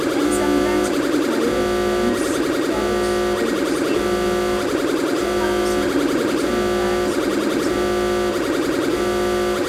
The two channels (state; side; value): identical; both; correlation 1.00